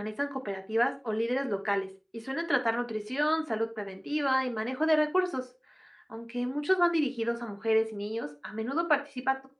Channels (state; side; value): identical; both; correlation 1.00